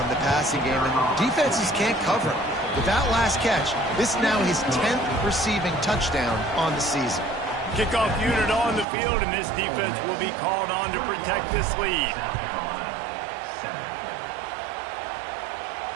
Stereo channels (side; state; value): left; drops out; at 8.8 s